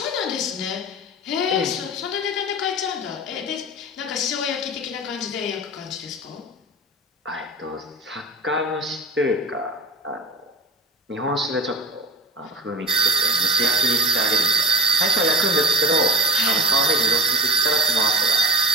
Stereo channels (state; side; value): normal; both; correlation 0.37